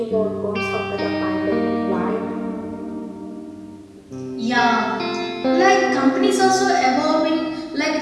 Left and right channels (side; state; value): both; identical; correlation 1.00